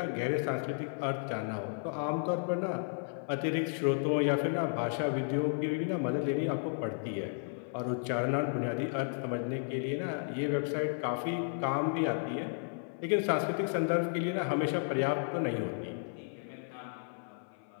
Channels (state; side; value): silent; right; 55 dB below the other